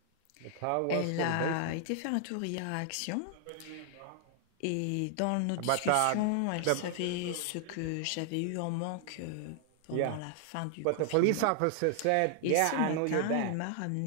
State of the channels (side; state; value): both; different; correlation 0.00